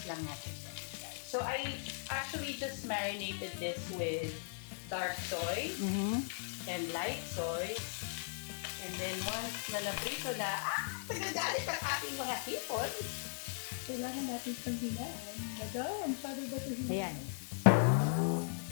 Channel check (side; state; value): right; silent; digital silence